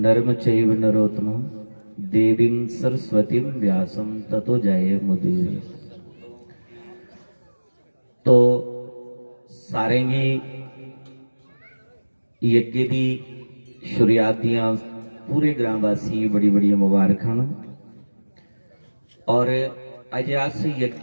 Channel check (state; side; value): inverted; both; correlation -1.00